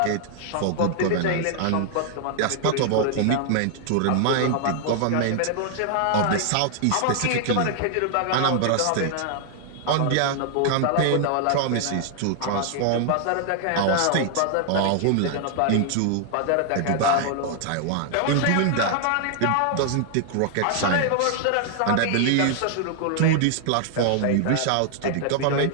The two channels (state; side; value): different; both; correlation 0.00